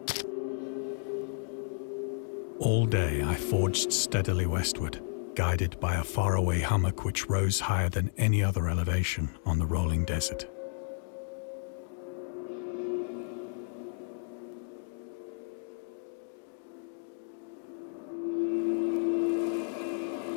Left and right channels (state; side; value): silent; right; 56 dB below the other